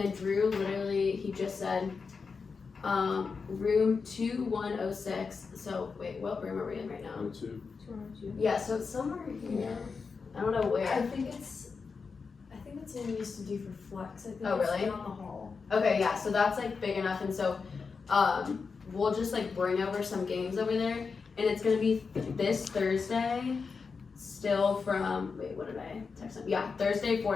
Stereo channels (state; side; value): quieter; right; 5.1 dB